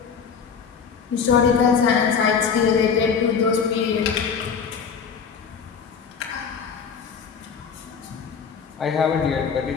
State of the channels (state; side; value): quieter; right; 6.3 dB